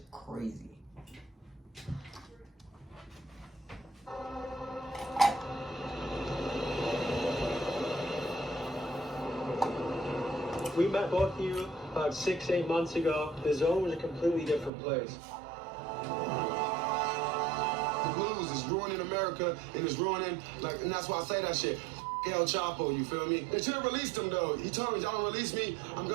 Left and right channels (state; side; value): drops out; left; at 14.7 s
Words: crazy. We met both of you about 6-8 months ago. The Zone was a completely different place. The blues is ruining America and it's ruining, and that's why I say that shit. El Chapo, you feel me? They should have released him though. He told me, y'all don't release me, I'm